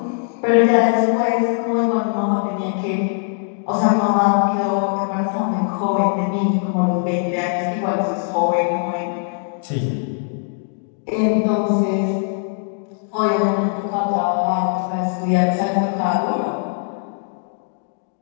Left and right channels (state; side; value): silent; right; 60 dB below the other